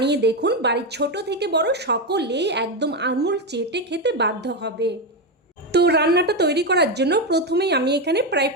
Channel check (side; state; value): both; normal; correlation 0.10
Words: দেখুন, বাড়ির ছোট থেকে বড় সকলেই একদম আঙুল চেটে খেতে বাধ্য হবে। তো রান্নাটা তৈরি করার জন্য প্রথমেই আমি এখানে প্রায়